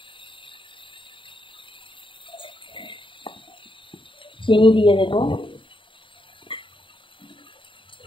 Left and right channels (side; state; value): right; late; 0.25 ms